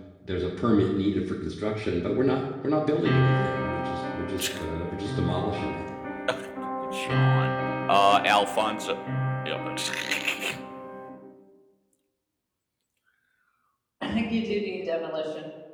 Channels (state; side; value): identical; both; correlation 1.00